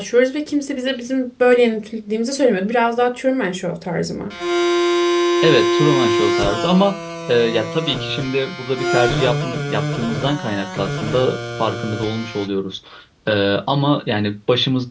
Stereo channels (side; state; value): both; identical; correlation 1.00